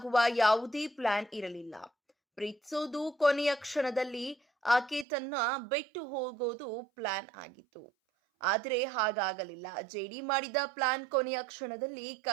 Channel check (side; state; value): left; drops out; at 5.1 s